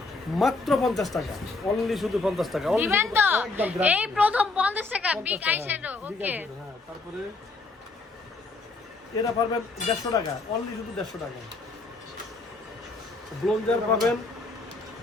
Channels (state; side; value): quieter; right; 3.5 dB